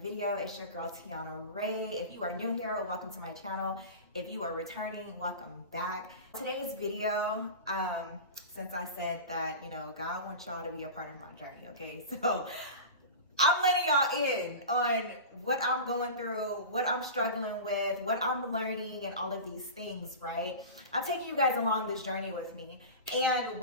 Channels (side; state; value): both; inverted; correlation -0.30